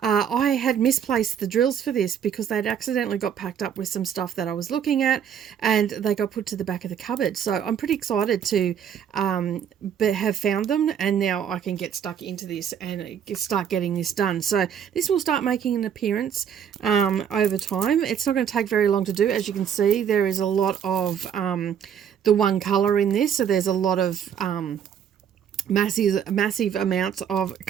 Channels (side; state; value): left; quieter; 8.5 dB